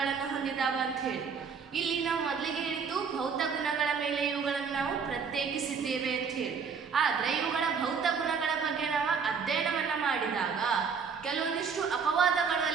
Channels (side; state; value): left; quieter; 6.0 dB